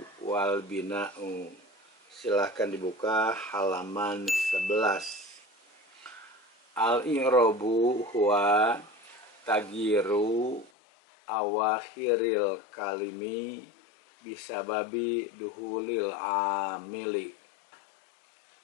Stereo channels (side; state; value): right; drops out; at 10.7 s